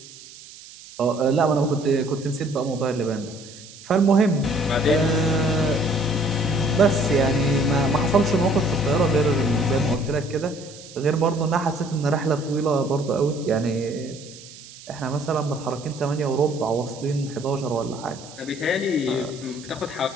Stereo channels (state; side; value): noise; right; hiss, 18 dB below the sound